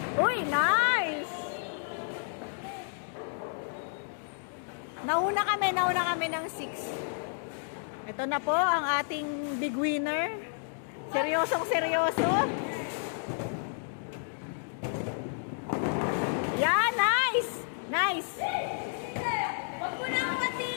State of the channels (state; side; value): silent; right; digital silence